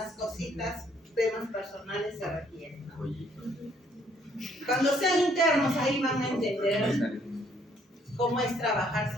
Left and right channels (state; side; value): normal; both; correlation 0.66